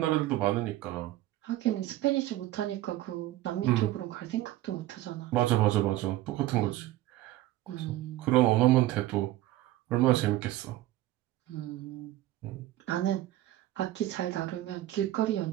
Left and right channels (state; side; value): quieter; left; 15.5 dB